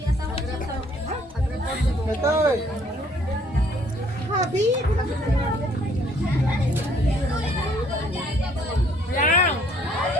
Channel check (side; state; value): both; normal; correlation 0.62